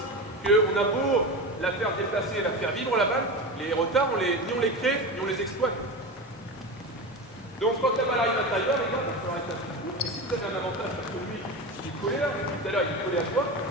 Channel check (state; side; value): normal; both; correlation 0.24